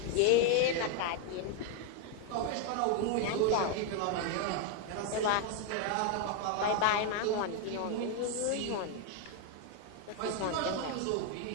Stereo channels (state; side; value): different; both; correlation 0.01